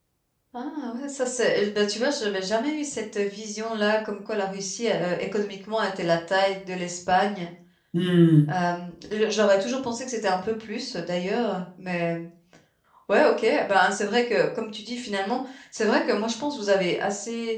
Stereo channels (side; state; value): both; identical; correlation 1.00